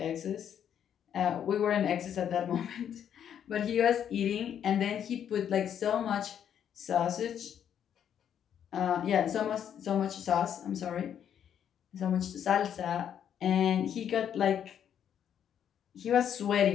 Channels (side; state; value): right; quieter; 9.1 dB